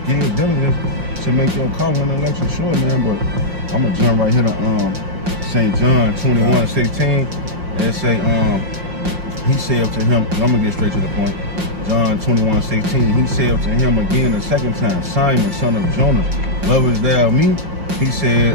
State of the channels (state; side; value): late; left; 5.6 ms